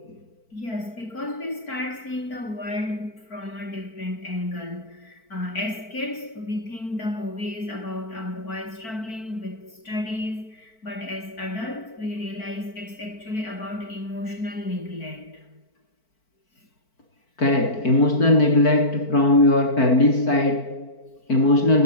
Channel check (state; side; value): late; right; 4.5 ms